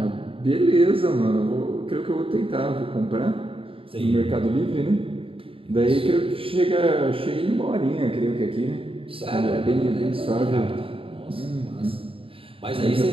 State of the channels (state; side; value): late; left; 0.26 ms